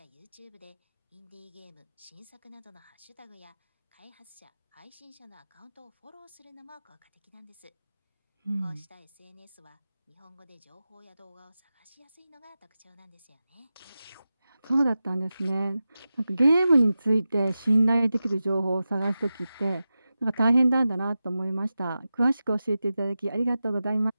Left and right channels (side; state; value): both; inverted; correlation -0.93